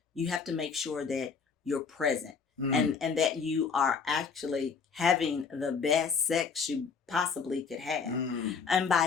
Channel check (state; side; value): quieter; right; 5.7 dB